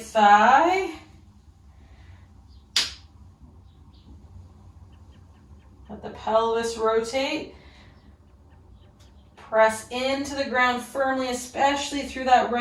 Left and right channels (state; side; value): identical; both; correlation 1.00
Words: Let the pelvis rotate. Press into the ground firmly, especially through that